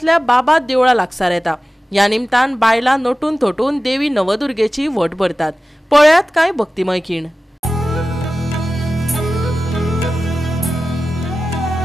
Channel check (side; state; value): both; normal; correlation 0.95